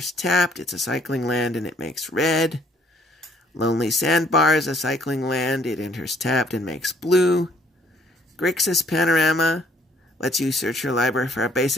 tapped. It's a cycling land and it makes red. Lonely Sandbar is a cycling land. It enters tapped and makes blue. Grixis Panorama lets you search your library for a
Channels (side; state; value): both; normal; correlation 0.64